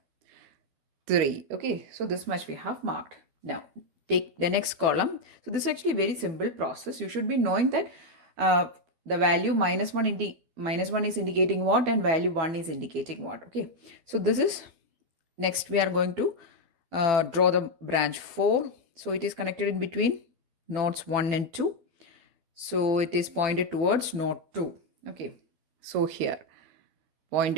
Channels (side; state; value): left; late; 12 ms